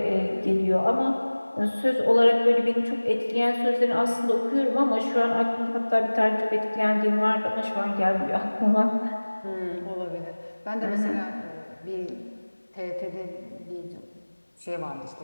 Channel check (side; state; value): both; inverted; correlation -1.00